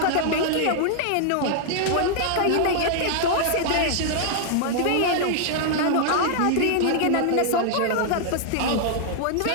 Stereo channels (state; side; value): different; both; correlation -0.01